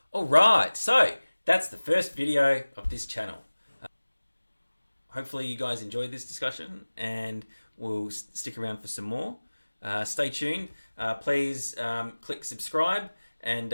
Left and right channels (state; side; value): inverted; both; correlation -1.00